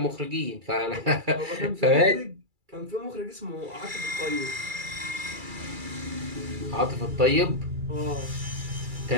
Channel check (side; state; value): left; late; 2.3 ms